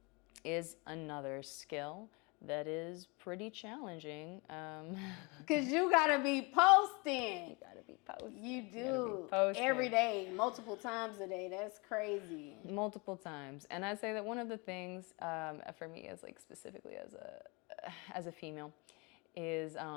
is another skill that is pretty challenging. Because you gotta be posting. You gotta be posting. You do. Every day, multiple times a day. That's crazy. Multiple times. And I'd say that one of the things for me, as like specifically as a female, is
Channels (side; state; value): right; quieter; 29.0 dB